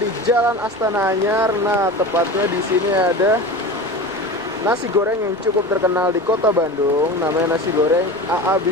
Jalan Astana Anyar. Nah, tepatnya di sini ada nasi goreng yang cukup terkenal di kota Bandung. Namanya nasi goreng AA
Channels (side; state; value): left; noise; rumble, 27 dB below the sound